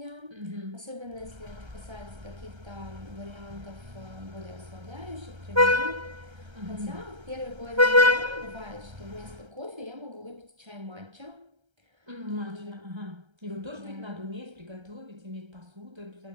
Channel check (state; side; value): late; left; 1.3 ms